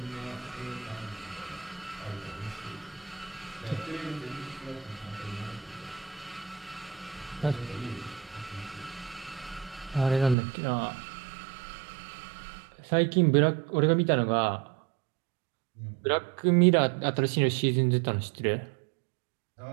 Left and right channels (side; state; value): left; drops out; at 10.4 s